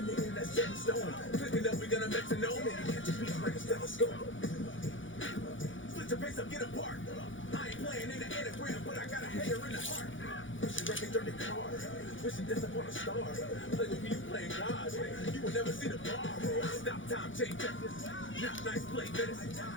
nigga that's set in stone. Clicking up, we gonna metronome. And you catch a beat like a stethoscope. Split your pace up, get apart. I ain't playing in the anagram, but I got a hater in the heart. Wishing records dirty car. Wishing death upon a star. Play with me, you playing God. You will never see the bar. Stop time, change records. Not nice play medicine.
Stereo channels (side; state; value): right; late; 0.56 ms